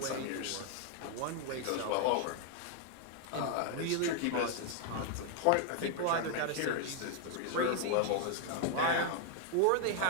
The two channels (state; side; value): different; both; correlation 0.00